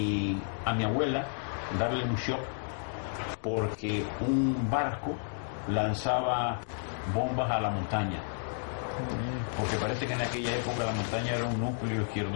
a mi abuela darle un shock porque un barco lanzaba bombas a la montaña, porque parece que en aquella época la montaña era un núcleo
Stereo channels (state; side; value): silent; right; digital silence